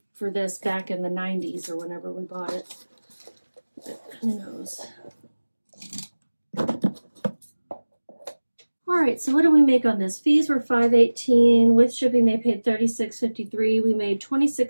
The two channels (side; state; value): both; inverted; correlation -1.00